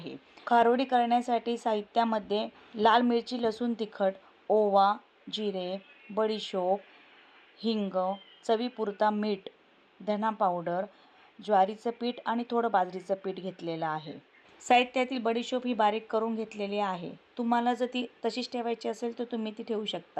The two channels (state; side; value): identical; both; correlation 1.00